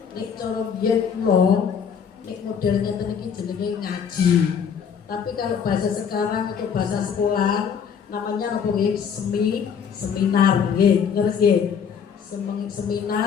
Nek cara biyen kula nek model ngeten iki jenenge ngaji. Tapi kalau bahasa sekarang atau bahasa sekolah namanya apa nggih? Seminar nggih. Ngerti nggih?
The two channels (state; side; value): quieter; right; 7.2 dB